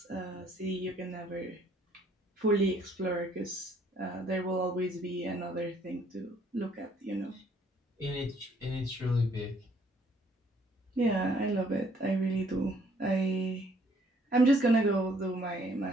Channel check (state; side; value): normal; both; correlation 0.64